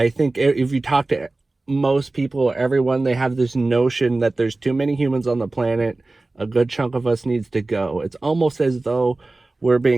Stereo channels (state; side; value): quieter; left; 3.1 dB